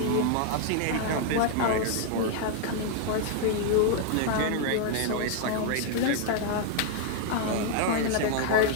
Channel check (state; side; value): different; both; correlation 0.00